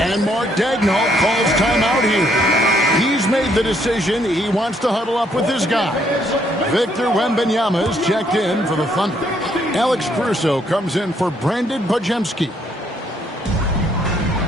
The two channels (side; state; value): both; normal; correlation 0.69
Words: Mark Daigneault calls timeout here. He's made the decision. He wants to huddle up with his guys. Victor Wembanyama is checked in for the Thunder. Alex Caruso comes in for Brandon Podziemski.